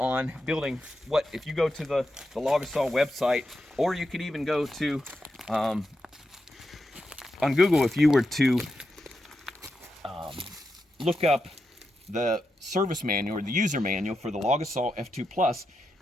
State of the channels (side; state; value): both; normal; correlation 0.87